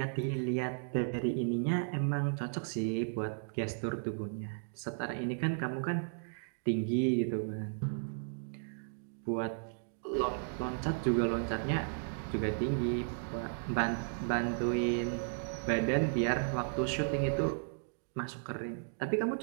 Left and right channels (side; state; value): left; silent; digital silence